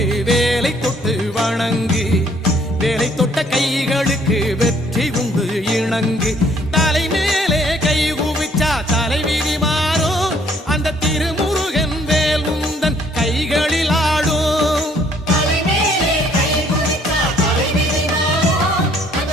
வேலை தொட்டு வணங்கு வேலை தொட்ட கைகளுக்கு வெற்றி உண்டு இணங்கு தலை மேலே கை குவிச்சா தலைவிதி மாறும் அந்த திருமுருகன் வேல் உந்தன் கைகளில் ஆடும்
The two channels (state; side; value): normal; both; correlation 0.63